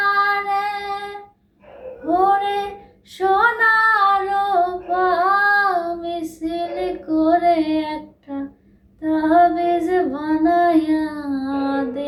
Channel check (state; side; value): identical; both; correlation 1.00